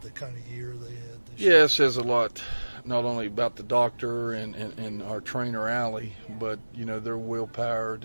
the kind of year they had this year. Yeah, it says a lot, not only about the doctor and our trainer, Allie, but, their willpower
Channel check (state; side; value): inverted; both; correlation -1.00